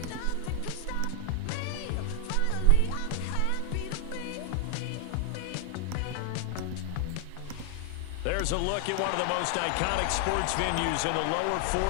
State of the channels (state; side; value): different; both; correlation 0.00